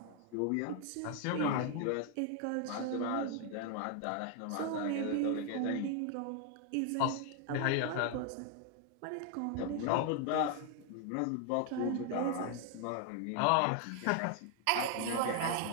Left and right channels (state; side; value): different; both; correlation 0.00